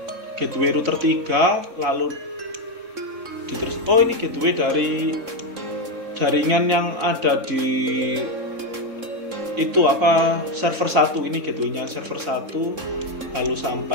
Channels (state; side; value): late; left; 3.6 ms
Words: gateway router 3, lalu oh, ini gateway dari jaringan yang ada di itu apa, server 1. Ini gateway-nya server 1, lalu